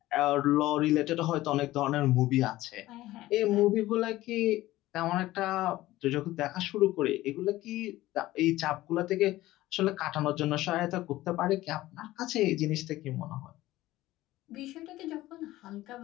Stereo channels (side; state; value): right; quieter; 16.6 dB